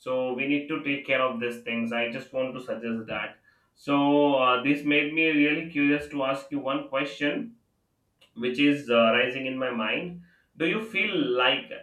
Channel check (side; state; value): both; identical; correlation 1.00